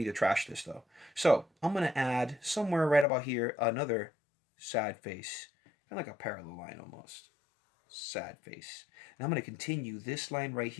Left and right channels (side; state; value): right; drops out; at 3.1 s